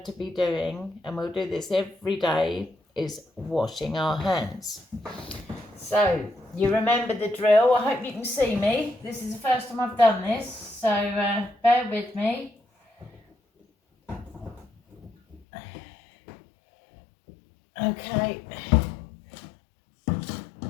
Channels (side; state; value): right; drops out; at 15.5 s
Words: to be doing, and we'll do this every day, is washing our hands. So you remember the drill. I hope you can see me. This is the first time I've done this, so bear with me. Okay.